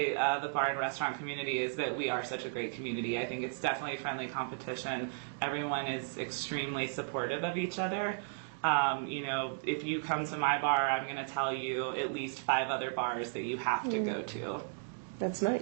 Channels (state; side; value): silent; left; digital silence